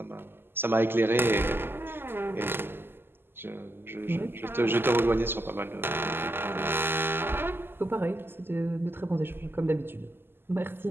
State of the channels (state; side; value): late; left; 0.11 ms